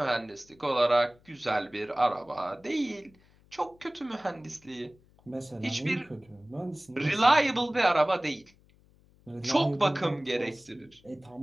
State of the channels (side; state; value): left; noise; hum, 30 dB below the sound